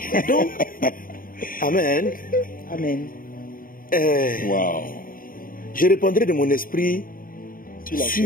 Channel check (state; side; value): late; right; 0.41 ms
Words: Donc, Amen. Amen. Wow. Je répandrai de mon esprit